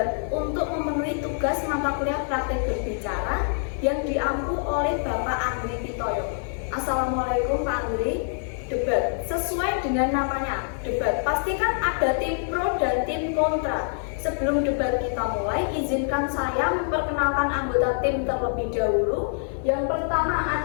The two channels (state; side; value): silent; right; 61 dB below the other